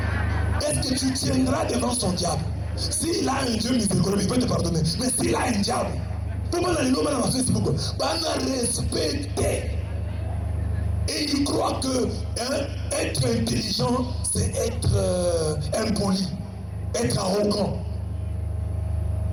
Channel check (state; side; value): identical; both; correlation 1.00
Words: Est-ce que tu tiendras devant son diable? S'il a un Dieu miséricordieux, il peut te pardonner. Mais s'il a un diable, comment on a Facebook? Respecter. Et il croit que être intelligent, c'est être impoli, être arrogant.